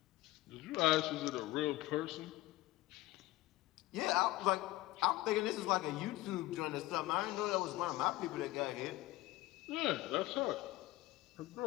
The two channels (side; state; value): right; quieter; 17.4 dB